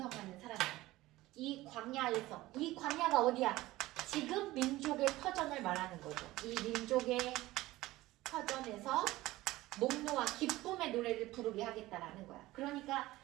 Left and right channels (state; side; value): quieter; left; 17.7 dB